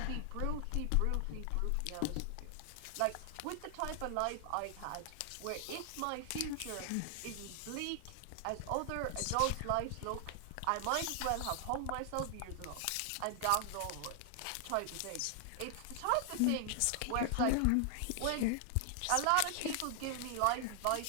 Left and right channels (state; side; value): different; both; correlation 0.00